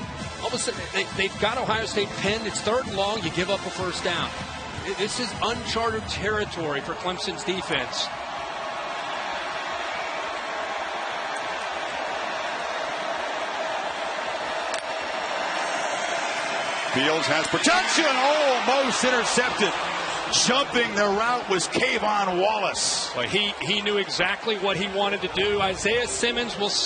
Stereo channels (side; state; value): both; identical; correlation 1.00